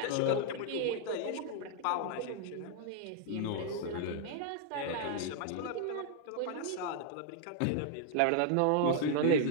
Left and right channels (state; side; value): different; both; correlation 0.00